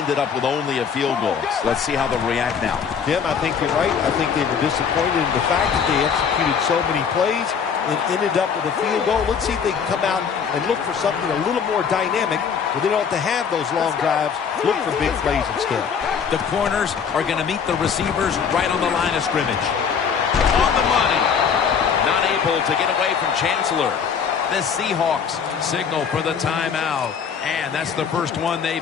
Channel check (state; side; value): quieter; right; 6.8 dB